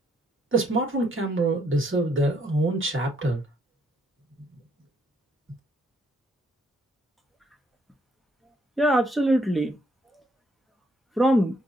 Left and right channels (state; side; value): normal; both; correlation 0.69